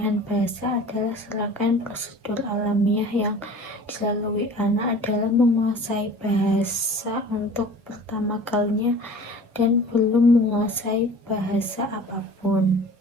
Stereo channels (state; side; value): normal; both; correlation 0.43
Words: bahasa adalah serangkaian prosedur alamiah yang dilalui anak adalah menguasai bahasa untuk pertama kalinya dan belum menguasai bahasa apapun.